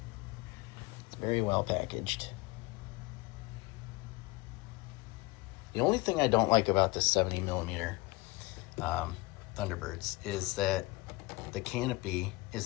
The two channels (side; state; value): right; quieter; 23.2 dB